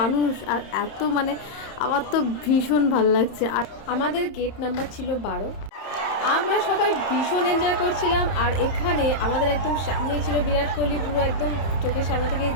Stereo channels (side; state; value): right; late; 30 ms